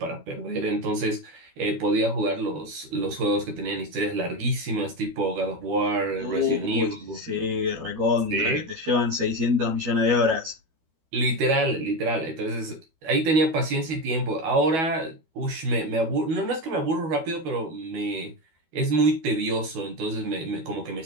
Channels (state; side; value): late; left; 12 ms